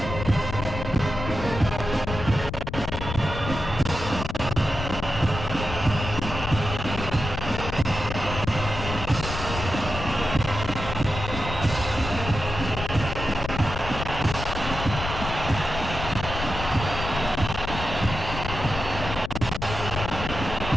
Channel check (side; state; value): left; noise; rumble, 7 dB below the sound